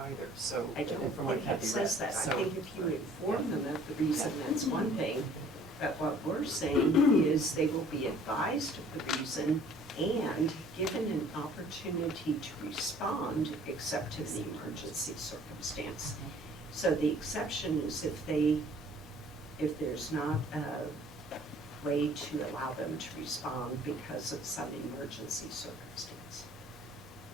so. I don't from what think it Kathy says read, that. I so- think if you inform them of the reason, that's one thing. But what we're saying is they will be advised of the reason and given an opportunity to respond except in the emergency circumstance. So the exception is if there's not a way to allow them to respond because of some emergency circumstance.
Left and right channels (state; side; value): normal; both; correlation 0.54